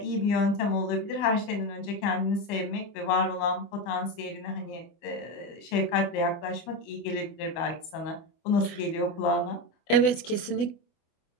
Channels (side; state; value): right; late; 24 ms